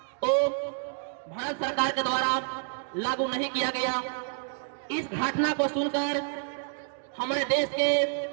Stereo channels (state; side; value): silent; left; 59 dB below the other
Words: वो भारत सरकार के द्वारा लागू नहीं किया गया। इस घटना को सुनकर हमारे देश के